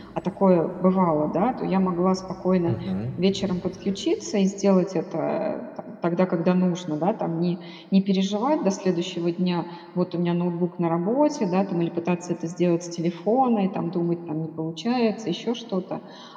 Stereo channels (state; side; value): identical; both; correlation 1.00